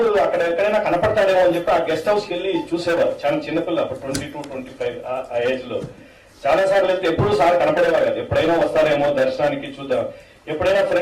అక్కడ ఎక్కడైనా కనపడతాడేమో అని చెప్పి ఆ గెస్ట్ హౌస్కి వెళ్ళి చూసేవారు. చాలా చిన్నపిల్ల, అప్పుడు 22, 25 ఆ ఏజ్ లో. చాలా సార్లు వెళ్తే ఎప్పుడు సార్ కనపడేవారు కాదు. ఎప్పుడైనా వస్తారేమో దర్శనానికి చూద్దాం. ఎప్పుడైనా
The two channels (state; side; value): identical; both; correlation 1.00